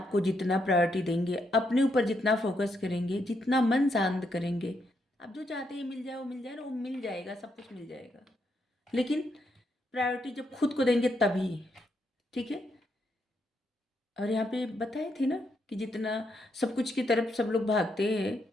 को जितना प्रायोरिटी देंगे, अपने ऊपर जितना फोकस करेंगे, जितना मन शांत करेंगे, आप जो चाहते हैं मिल जाए, वो मिल जाए ना, वो मिल जाएगा, सब कुछ मिल जाएगा। लेकिन प्रायोरिटी जब खुद को देंगे तभी। ठीक है। और यहाँ पे बताए थे ना कि जितना सब कुछ की तरफ सब लोग भागते हैं,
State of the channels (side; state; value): both; normal; correlation 0.79